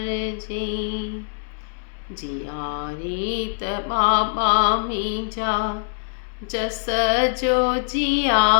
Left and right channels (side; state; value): right; silent; digital silence